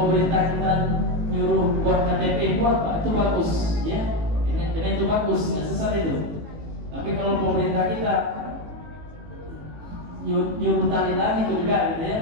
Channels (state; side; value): late; left; 18 ms